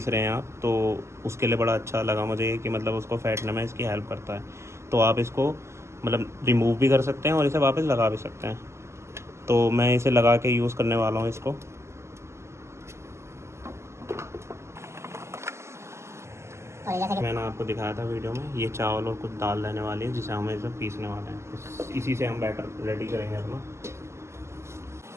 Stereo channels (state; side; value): late; left; 0.13 ms